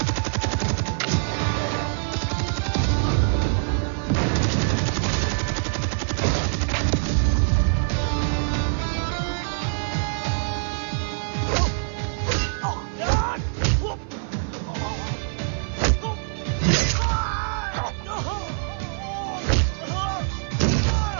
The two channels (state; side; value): silent; left; 62 dB below the other